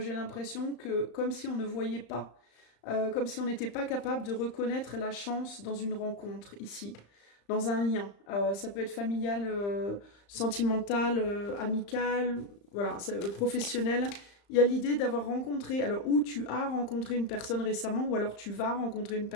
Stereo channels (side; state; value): right; late; 35 ms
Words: l'impression que comme si on ne voyait pas, comme si on n'était pas capable de reconnaître la chance dans une rencontre ici, dans un lien. Ça peut être familial, sentimental, amical, voilà, professionnel. Il y a l'idée d'avoir rencontré, alors ou tu as rencontré une personne récemment, ou alors tu vas rencontrer une